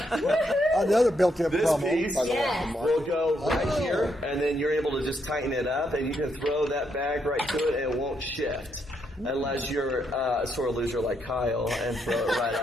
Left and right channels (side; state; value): both; normal; correlation 0.77